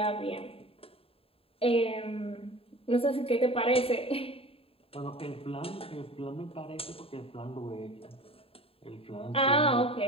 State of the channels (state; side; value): late; right; 0.27 ms